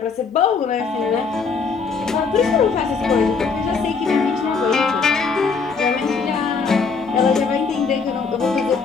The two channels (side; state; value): right; quieter; 5.0 dB